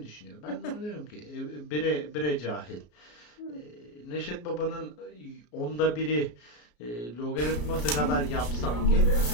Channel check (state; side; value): late; right; 33 ms